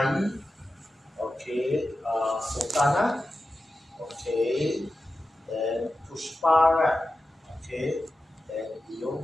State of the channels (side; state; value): both; normal; correlation 0.92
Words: okay, Sultana, okay, then Pushpa, okay, then Leo,